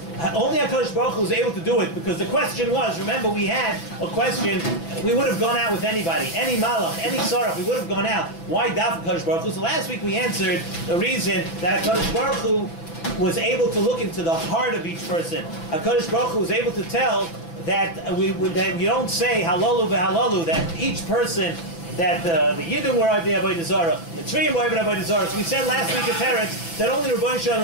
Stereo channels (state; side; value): late; right; 6.0 ms